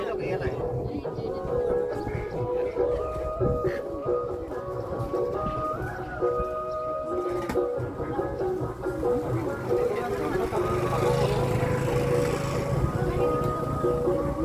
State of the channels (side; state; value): both; identical; correlation 1.00